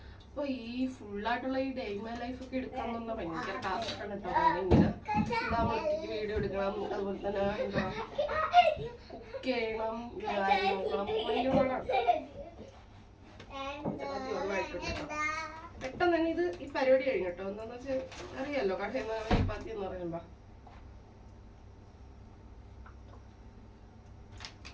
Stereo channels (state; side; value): identical; both; correlation 1.00